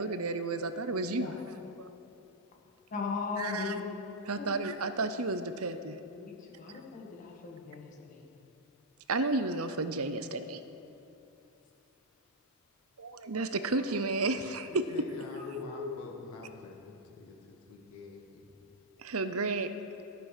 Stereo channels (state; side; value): normal; both; correlation -0.05